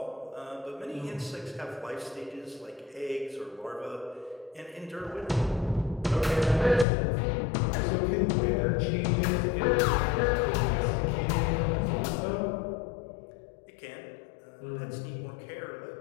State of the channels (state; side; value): drops out; right; at 6.9 s